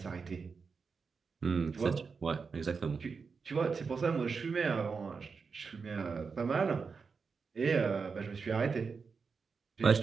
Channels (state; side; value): quieter; left; 5.2 dB